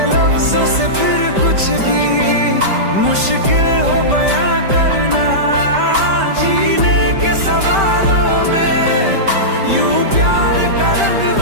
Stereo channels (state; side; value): late; left; 5.1 ms